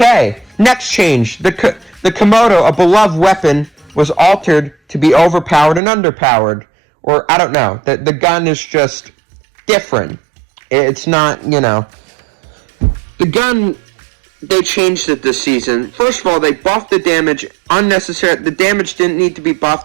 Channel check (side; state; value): left; drops out; at 5.8 s